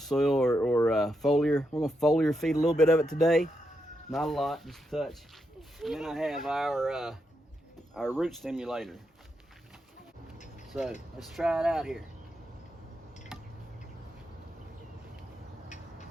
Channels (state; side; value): normal; both; correlation 0.83